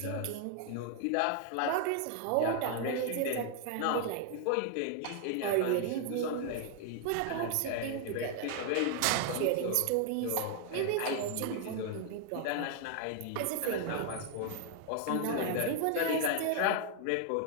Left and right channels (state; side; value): different; both; correlation 0.00